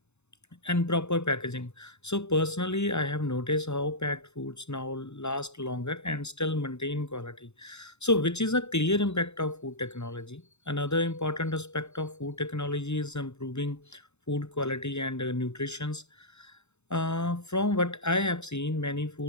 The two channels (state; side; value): late; right; 0.82 ms